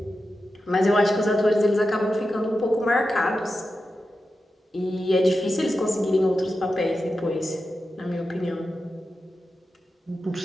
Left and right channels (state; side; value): normal; both; correlation 0.91